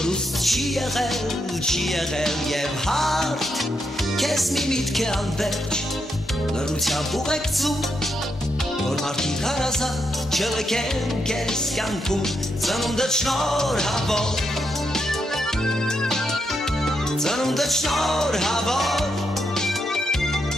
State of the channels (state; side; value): normal; both; correlation 0.81